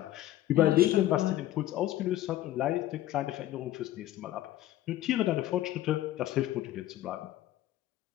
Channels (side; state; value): right; quieter; 14.1 dB